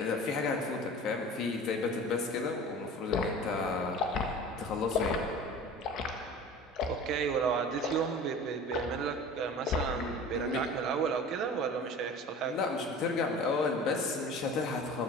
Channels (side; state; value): both; normal; correlation 0.40